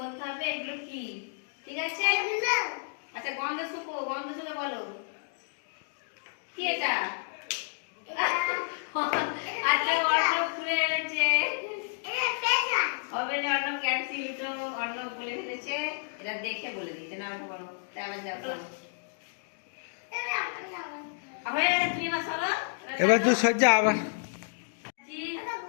হবে এগুলো কি। ঠিক আছে? আচ্ছা গন্ধ শুকে বলো কি এটা। আচ্ছা অর্ণব খুলে এনেছে হবে না, অর্ণব ক্যান্সেল তো অর্ণব বলে ফেলেছে। এটা দেখে বলে দিচ্ছে না বলো, তাই আবার যাও বলো। হয়ে গেছে, তুমি এবার চলো। এবার তুই সজ্জা আবার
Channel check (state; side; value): silent; right; digital silence